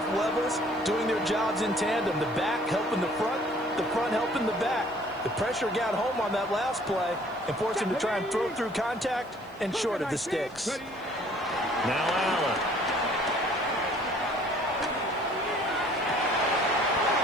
levels doing their jobs in tandem. The back helping the front helping the back. The pressure got home on that last play and forced him to try and throw through contact and short of the sticks. Now Allen.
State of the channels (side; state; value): left; noise; hiss, 30 dB below the sound